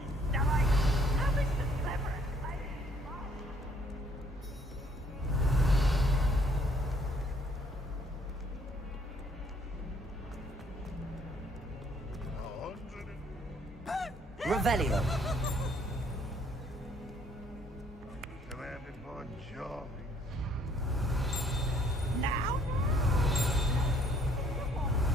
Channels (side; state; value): both; normal; correlation 0.63